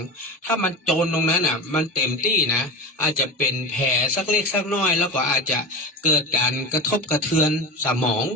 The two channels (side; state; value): both; normal; correlation 0.26